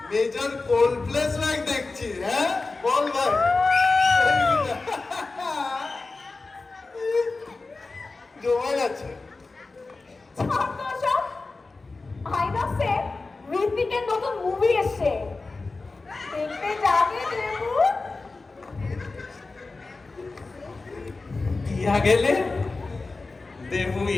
মেজর কোল্ড প্লেস লাইক দেখছি। হ্যাঁ বল ভাই, জমা গেছে। আইনক্সে ঋত্বিকের নতুন মুভি এসছে, দেখতে যাবে দেবু? দিয়া গেলে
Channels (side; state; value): right; quieter; 3.7 dB